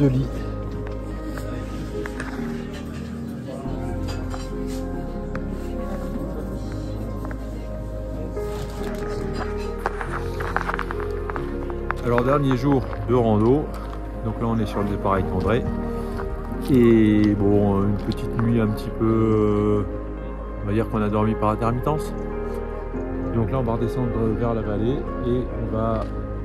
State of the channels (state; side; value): identical; both; correlation 1.00